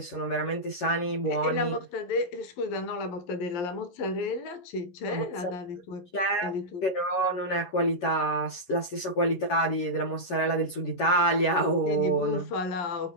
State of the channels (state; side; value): late; right; 11 ms